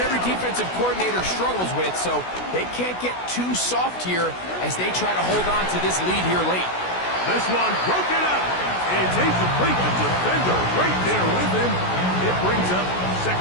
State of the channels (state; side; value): late; right; 16 ms